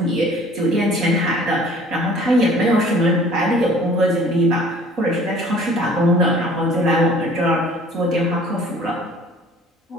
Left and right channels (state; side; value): normal; both; correlation 0.51